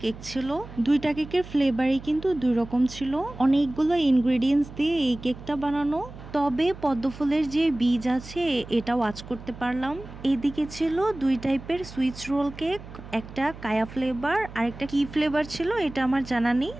কেক ছিল। দুইটা কেকের ফ্লেভারই কিন্তু দুই রকম ছিল। অনেকগুলো ইনগ্রেডিয়েন্টস দিয়ে এই কেকটা বানানো। তবে পদ্মফুলের যে বীজ আছে এটা ওয়াচ করতে পারলাম। এদিকে ছিল দুই টাইপের সুইচ রোল কেক, একটা কায়া ফ্লেভার আর একটা কি ফ্লেভার ছিল এটা আমার জানা নেই,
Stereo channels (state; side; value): noise; right; hum, 15 dB below the sound